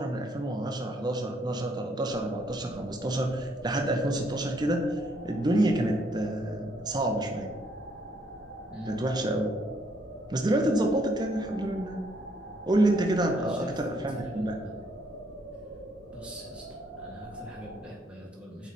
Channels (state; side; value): normal; both; correlation 0.69